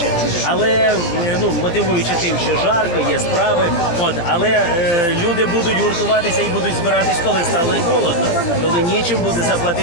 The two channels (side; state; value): right; late; 17 ms